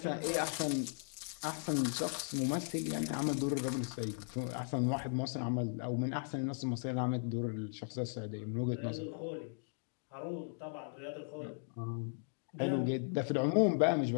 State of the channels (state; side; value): silent; right; digital silence